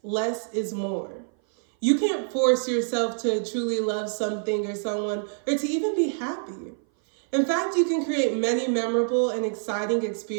less is more. You can't force yourself to truly love something or someone or to even be happy. In fact, you can create many memorable and exciting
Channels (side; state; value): left; silent; 57 dB below the other